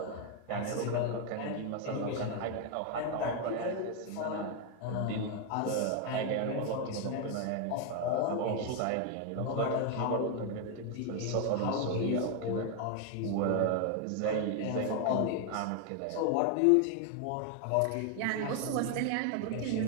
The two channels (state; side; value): different; both; correlation 0.01